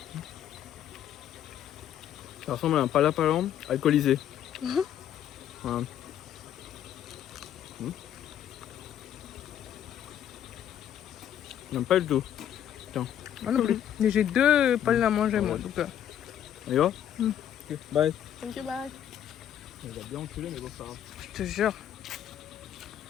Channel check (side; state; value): right; quieter; 10.3 dB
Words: Ça ressemble à un palapalan alcoolisé. Voilà. J'aime pas du tout. Moi non plus. Mais j'ai deux palmes à manger moi. Donc, On y va? Ok, bye. thank you, bye. On va bien enculer mais bon ça va. Je te jure.